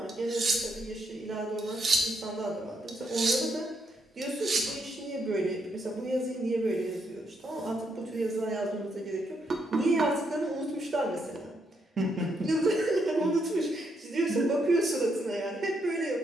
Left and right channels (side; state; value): both; normal; correlation 0.77